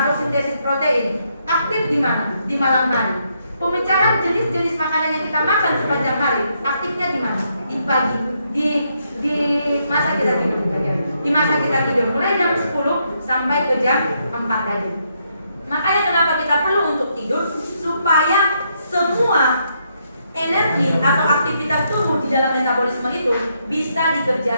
sintesis protein aktif di mana? Di malam hari. Pemecahan jenis-jenis makanan yang kita makan sepanjang hari aktifnya di mana? Di pagi, di masa kita tidur. Di masa kita tidur mulai jam 10 sampai ke jam 4 tadi. Makanya kenapa kita perlu untuk tidur supaya semua energi atau aktivitas tubuh di dalam metabolisme itu bisa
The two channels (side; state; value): both; inverted; correlation -0.76